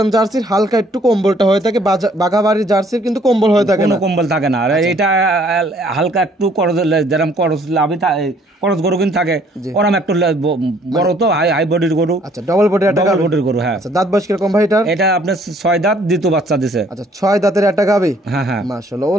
জার্সির হালকা একটু কম্বলটা হয়ে থাকে। বাঘাবাড়ির জার্সির কিন্তু কম্বল হয়ে থাকে কোনো না। কম্বল থাকে না। আর এটা হালকা একটু যেরকম করস লাভি করস গরু কিন্তু থাকে, ওরম একটু বড় তো হাই বডির গরু। আচ্ছা ডবল বডির একটা ডবল বডির গরু। হ্যাঁ। আচ্ছা দাঁত বয়স কিরকম ভাই এটা? এটা আপনার 6 দাঁত দ্বিতীয় বাচ্চা দিছে। আচ্ছা 6 দাঁতের একটা গাভী। হ্যাঁ হ্যাঁ। মাশাআল্লাহ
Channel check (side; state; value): both; normal; correlation 0.61